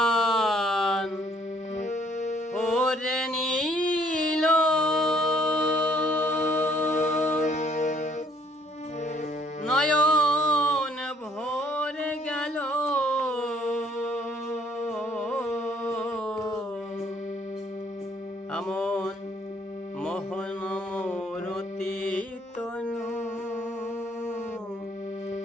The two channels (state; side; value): normal; both; correlation 0.63